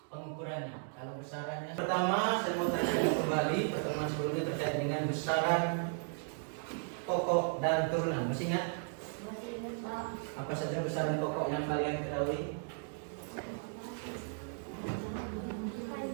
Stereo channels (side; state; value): left; silent; 54 dB below the other